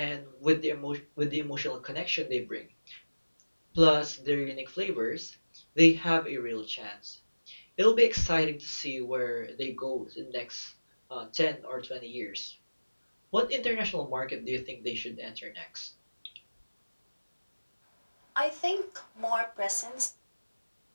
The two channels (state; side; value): inverted; both; correlation -1.00